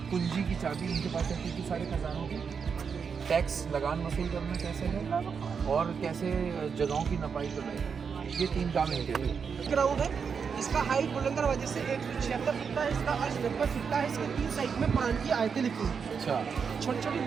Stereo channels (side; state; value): left; quieter; 6.2 dB